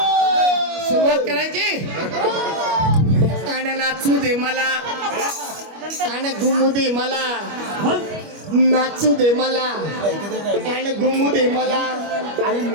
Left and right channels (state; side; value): late; left; 25 ms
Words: सुरुवात करायची आणि नाचू दे मला आणि घुमू दे मला, नाचू दे मला आणि घुमू दे मला,